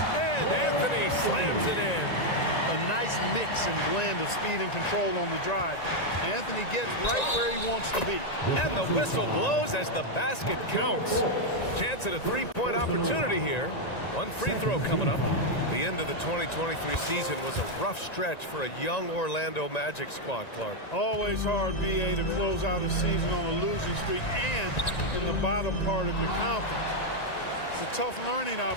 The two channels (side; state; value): right; late; 1.9 ms